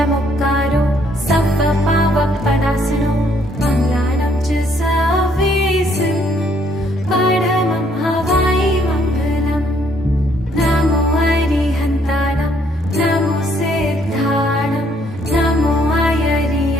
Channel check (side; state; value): both; normal; correlation 0.67